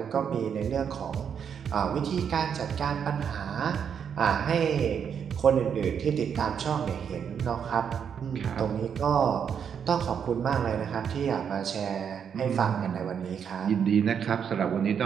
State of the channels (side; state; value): left; quieter; 7.6 dB